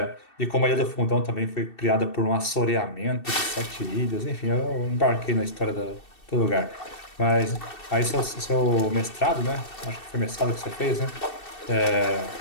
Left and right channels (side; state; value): right; late; 2.7 ms